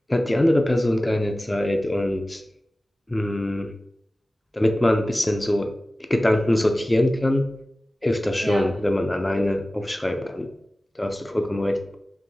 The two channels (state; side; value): normal; both; correlation 0.97